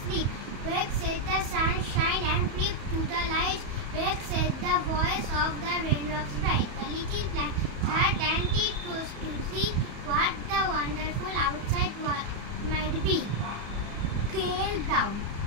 Wake said the sunshine and creep to the light. Wake said the voice of the raindrops bright. The little plant had and it was to see what the wonderful outside might be. Cale Brown.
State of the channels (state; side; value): late; left; 34 ms